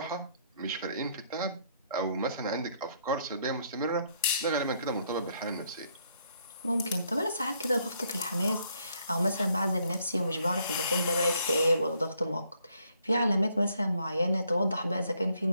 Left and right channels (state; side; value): inverted; both; correlation -0.70